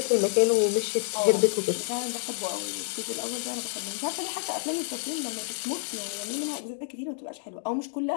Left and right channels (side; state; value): right; silent; digital silence